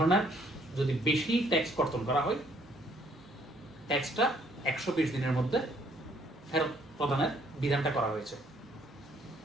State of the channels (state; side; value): normal; both; correlation 0.65